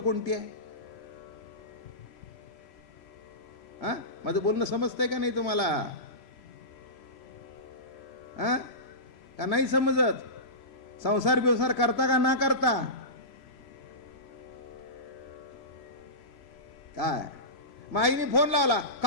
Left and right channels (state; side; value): late; right; 3.0 ms